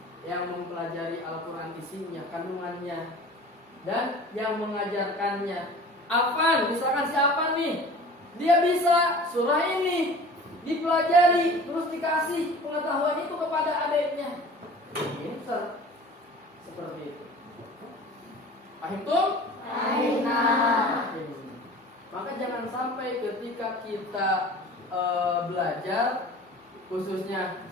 yang mempelajari Al-Quran isinya, kandungannya, dan yang mengajarkannya. Afan, misalkan si Afan nih, dia bisa surah ini, dipelajari, terus dikasih pengetahuan itu kepada adiknya. Pinter. Seperti itu. Paham tuh? Maka jangan sampai ketika kita belajar, khususnya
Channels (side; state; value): both; normal; correlation 0.42